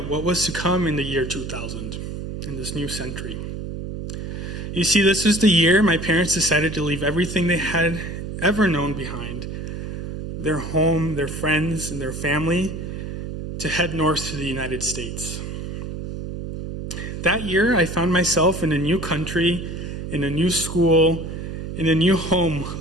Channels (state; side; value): noise; right; hum, 7 dB below the sound